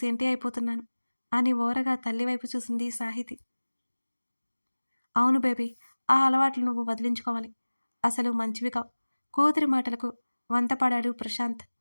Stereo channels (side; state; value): both; inverted; correlation -1.00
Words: సెంటి అయిపోతున్నాను అని ఓరగా తల్లి వైపు చూసింది సాహితి. అవును బేబీ, ఆ అలవాట్లు నువ్వు వదిలించుకోవాలి, అసలు మంచివి కావు. కూతురి మాటలకు వంతపాడాడు ప్రశాంత్.